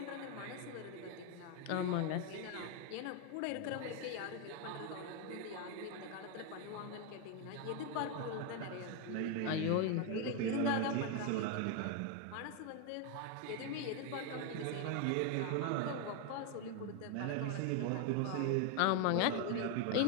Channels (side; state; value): both; different; correlation 0.01